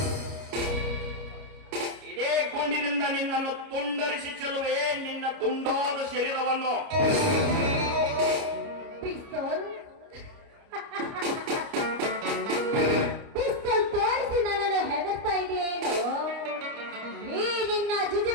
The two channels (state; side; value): late; left; 29 ms